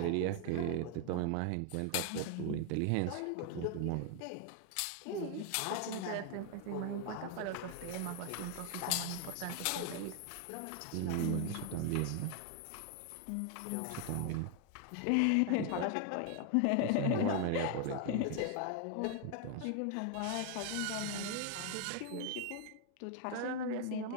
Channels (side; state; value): both; different; correlation 0.00